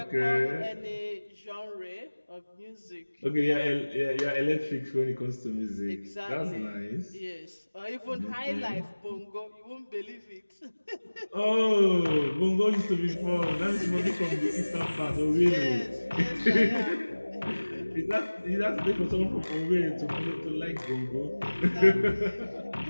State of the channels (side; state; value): both; inverted; correlation -1.00